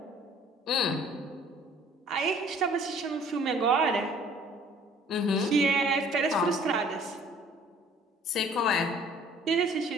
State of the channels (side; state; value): both; normal; correlation 0.54